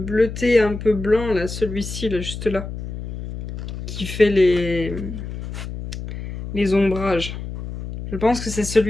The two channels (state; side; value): noise; left; hum, 8 dB below the sound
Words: un peu blanc là, celui-ci là, juste là, qui fait les ombrages. Je pense que c'est